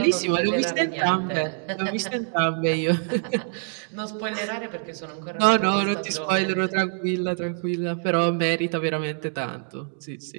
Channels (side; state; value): left; silent; 57 dB below the other